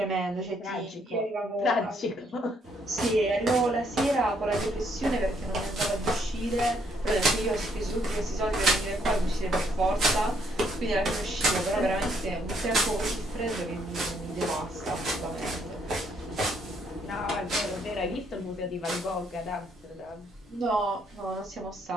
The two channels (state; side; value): normal; both; correlation 0.71